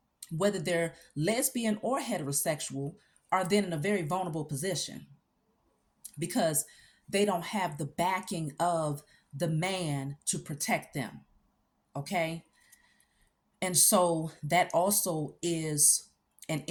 whether they're lesbian or heterosexual, are then in a very vulnerable position because they don't have the backing of the man to protect them. Okay. And so that also is an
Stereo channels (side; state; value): both; identical; correlation 1.00